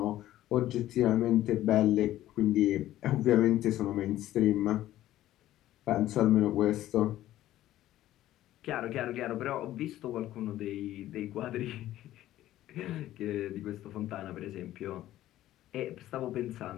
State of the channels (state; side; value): quieter; right; 14.0 dB